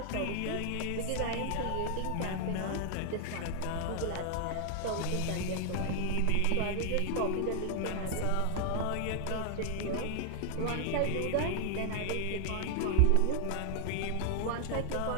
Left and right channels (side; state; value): both; different; correlation 0.00